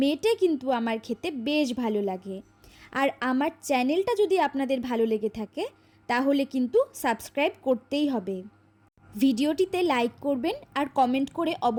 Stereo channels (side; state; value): both; identical; correlation 1.00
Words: মেটে কিন্তু আমার খেতে বেশ ভালো লাগে। আর আমার চ্যানেলটা যদি আপনাদের ভালো লেগে থাকে তাহলে কিন্তু সাবস্ক্রাইব করতেই হবে। ভিডিওটিতে লাইক করবেন আর কমেন্ট করে